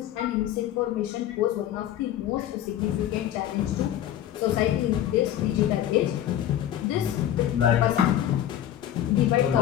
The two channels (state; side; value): quieter; right; 11.5 dB